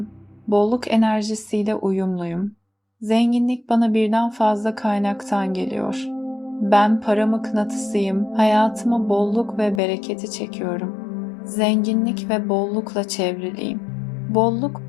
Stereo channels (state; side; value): drops out; right; at 9.8 s